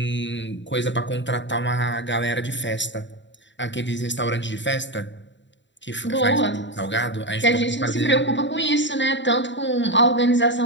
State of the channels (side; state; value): right; late; 0.53 ms